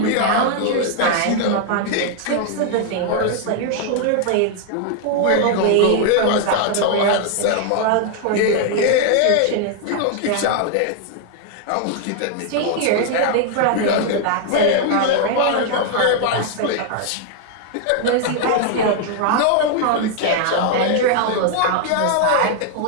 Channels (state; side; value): different; both; correlation 0.00